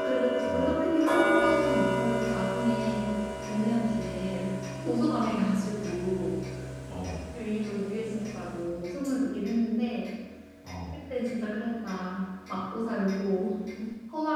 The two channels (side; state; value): both; identical; correlation 1.00